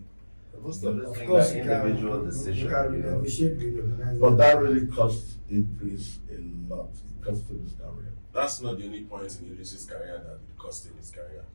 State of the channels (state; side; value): inverted; both; correlation -1.00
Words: Most of this of thing course like you can, individual you decision. can You know. negotiate with the organizer. But that really cost Idris a lot. It cost him his career. That's not the only point in Idris's career that it cost him his career.